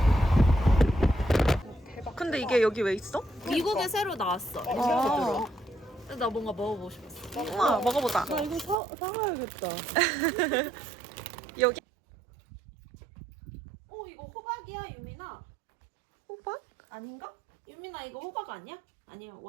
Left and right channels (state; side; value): drops out; left; at 8.8 s